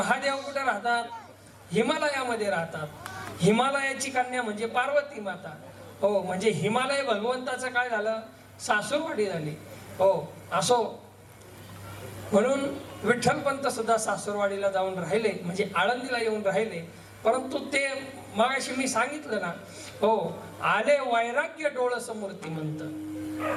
कुठे राहतात? हिमालयामध्ये राहतात. हिमालयाची कन्या म्हणजे पार्वती माता. हो, म्हणजे हिमालय भगवंताचं काय झालं? सासूरवाडी झाली. हो, असो, म्हणून विठ्ठलपंत सुद्धा सासूरवाडीला जाऊन राहिले, म्हणजे आळंदीला येऊन राहिले. परंतु ते मगाशी मी सांगितलं ना, हो, आले वैराग्य डोळस मूर्तिमंत.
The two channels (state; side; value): identical; both; correlation 1.00